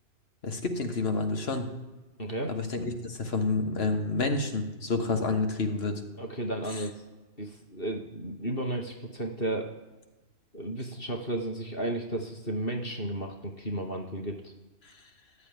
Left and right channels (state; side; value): late; right; 3.0 ms